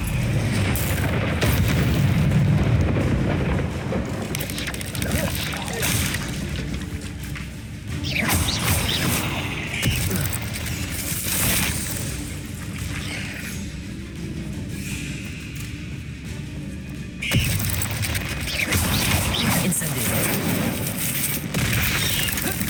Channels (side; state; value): both; identical; correlation 1.00